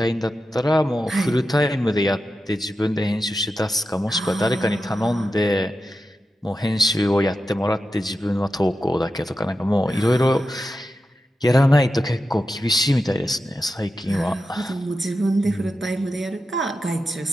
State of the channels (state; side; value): normal; both; correlation 0.90